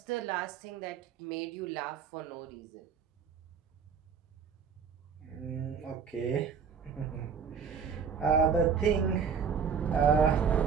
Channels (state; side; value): quieter; left; 6.6 dB